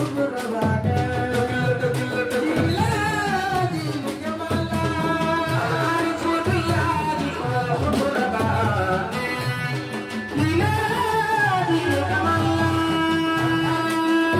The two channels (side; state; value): both; identical; correlation 1.00